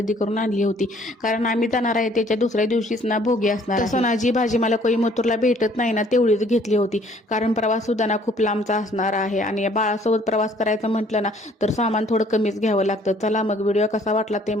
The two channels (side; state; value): both; normal; correlation 0.59